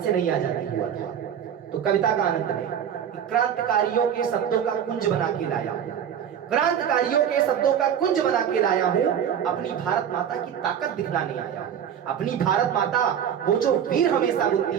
नहीं आजादी हुआ था। तो कविता का आनंद लें। क्रांतिकारियों के शब्दों का कुंज बना के लाया हूं, क्रांतिकारियों के शब्दों का कुंज बना के लाया हूं, अपनी भारत माता की ताकत दिखलाने आया हूं। अपनी भारत माता वो जो वीर हमेशा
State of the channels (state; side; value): quieter; left; 8.9 dB